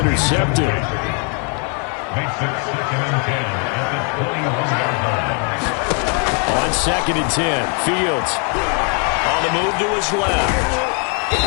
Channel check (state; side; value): quieter; right; 39.8 dB